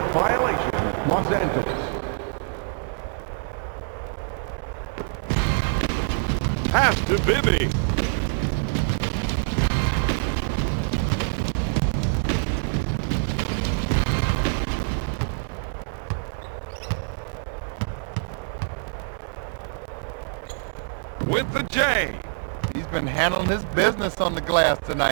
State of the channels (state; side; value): silent; left; 62 dB below the other